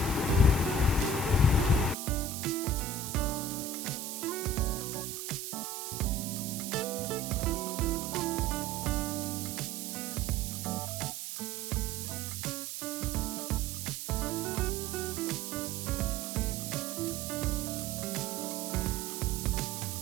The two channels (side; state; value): right; noise; hiss, 6 dB below the sound